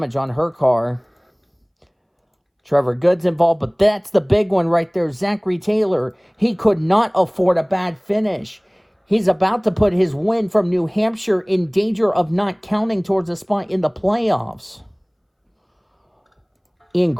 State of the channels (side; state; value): both; identical; correlation 1.00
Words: on her car. Trevor Good's involved, but that's the big one right there. Zachary Taylor. He could not afford a bad finish. He's about to put his win from New Hampshire in danger of not counting towards a spot in the playoffs. Ian